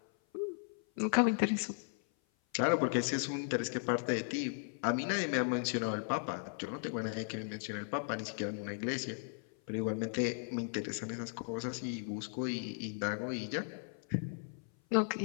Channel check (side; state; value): right; silent; 53 dB below the other